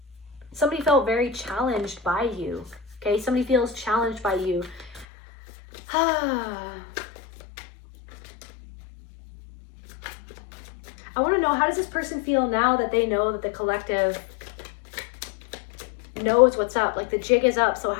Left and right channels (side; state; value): right; drops out; at 5.1 s